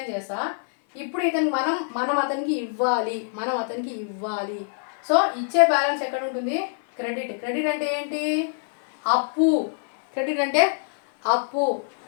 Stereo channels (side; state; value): right; silent; 58 dB below the other